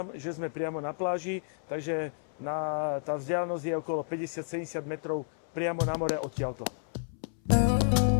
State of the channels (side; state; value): right; silent; 57 dB below the other